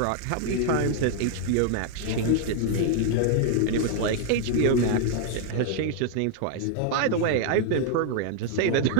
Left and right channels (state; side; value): different; both; correlation 0.00